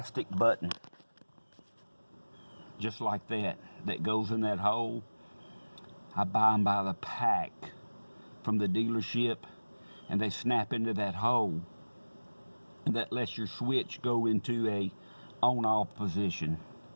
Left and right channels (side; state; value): both; inverted; correlation -1.00